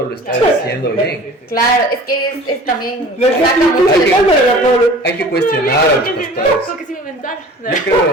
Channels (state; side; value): normal; both; correlation 0.44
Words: lo está Claro. diciendo bien. Claro, es que es también... Le saca estoy mucho de- explicándole a Pablo. Hay que cuestionar a los pastores. Como que sí me inventaron. Yo